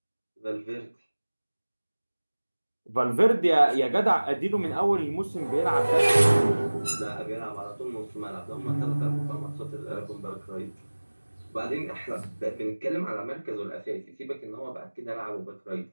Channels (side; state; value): both; inverted; correlation -1.00